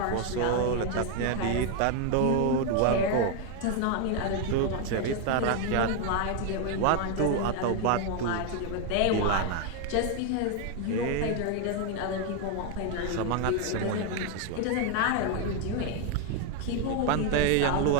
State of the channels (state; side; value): different; both; correlation 0.01